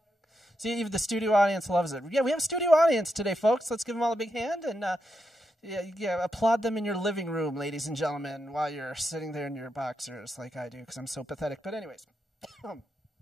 See, even the studio audience loves it. Yeah, we have a studio audience today, folks. Let's give them all a big hand and applaud them in your living room, ladies and gentlemen, while you're sitting there in your boxers like I do, because I'm so pathetic. But anyways,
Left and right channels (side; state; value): both; normal; correlation 0.84